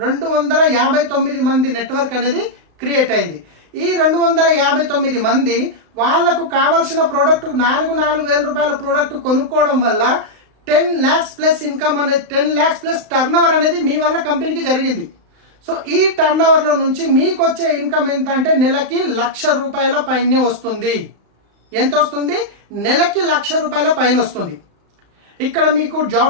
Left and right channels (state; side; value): late; left; 35 ms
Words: 259 మంది నెట్వర్క్ అనేది క్రియేట్ అయింది. ఈ 259 మంది వాళ్లకు కావాల్సిన ప్రోడక్ట్ 4,000 రూపాయల ప్రోడక్ట్ కొనుక్కోవడం వల్ల 10 lakhs ప్లస్ ఇన్కమ్ అనేది, 10 lakhs ప్లస్ టర్నోవర్ అనేది మీ వల్ల కంపెనీకి జరిగింది. సో ఈ టర్నోవర్ లో నుంచి మీకు వచ్చే ఇన్కమ్ ఎంత అంటే నెలకి 1,00,000 రూపాయల పైనే వస్తుంది. ఎంత వస్తుంది? నెలకి 1,00,000 రూపాయల పైన వస్తుంది. ఇక్కడ మీకు